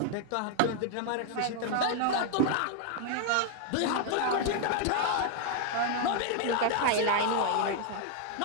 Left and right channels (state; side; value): different; both; correlation 0.00